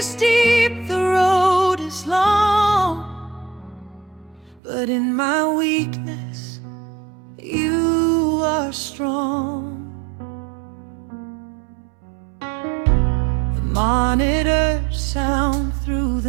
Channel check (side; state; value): left; drops out; at 4.6 s